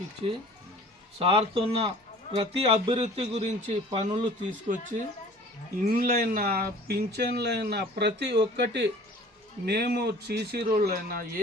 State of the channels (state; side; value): normal; both; correlation 0.48